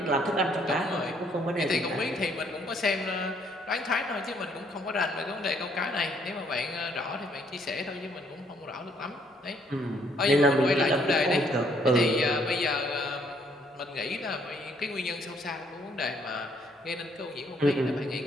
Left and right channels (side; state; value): both; normal; correlation 0.67